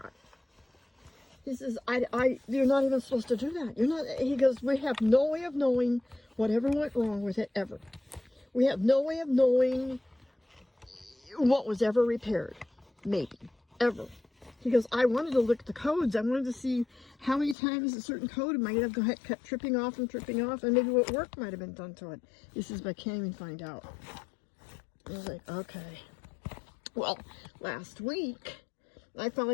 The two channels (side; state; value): right; drops out; at 17.6 s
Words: He says, you're not even supposed to do that. You're not, he goes, we have no way of knowing whatever went wrong with it ever. We have no way of knowing what was ever repaired. Maybe. Ever. He goes, I wanted to look at the codes. I wanted to see how many times a certain code might have kept tripping off, and maybe what work might have been done to it. He says, but I can't even find out. I was like, okay. Well, last week, I